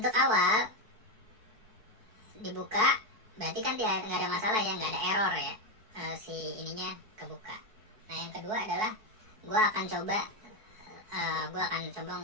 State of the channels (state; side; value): late; left; 4.6 ms